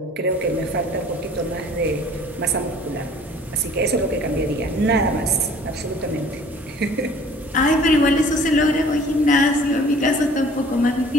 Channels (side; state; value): both; normal; correlation 0.51